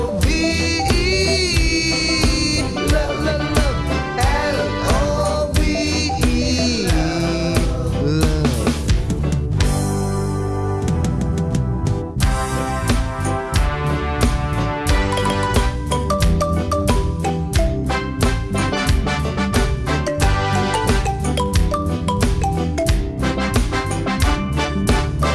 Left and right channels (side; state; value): both; identical; correlation 1.00